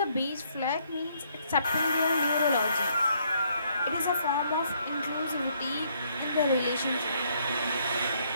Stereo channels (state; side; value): inverted; both; correlation -0.69